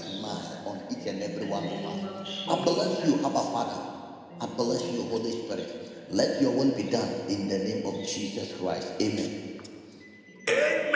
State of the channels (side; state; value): both; identical; correlation 1.00